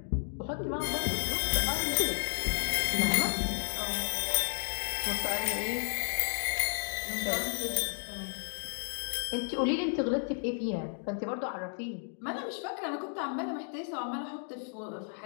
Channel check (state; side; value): silent; right; 56 dB below the other